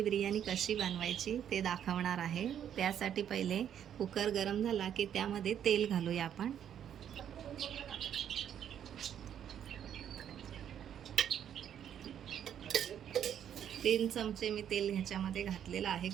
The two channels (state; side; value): quieter; left; 9.5 dB